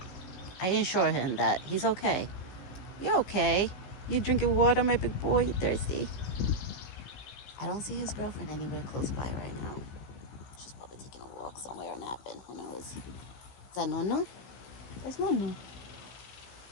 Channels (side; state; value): right; late; 15 ms